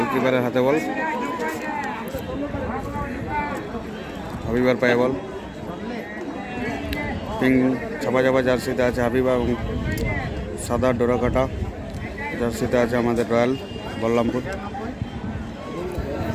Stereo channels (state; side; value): identical; both; correlation 1.00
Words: হাতে বল, হাবিবার পায়ে বল। পিঙ্ক ছাপা ছাপা জার্সিতে আছে হাবিবা এবং সাদা ডোরাকাটা জার্সিতে আছে আমাদের রয়্যাল বলরামপুর।